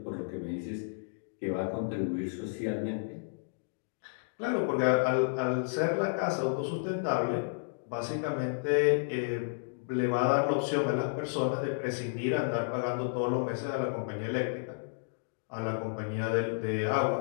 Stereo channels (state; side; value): silent; right; digital silence